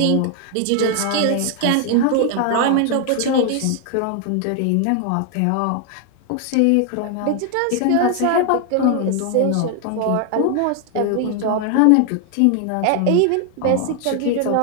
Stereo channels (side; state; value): both; different; correlation 0.00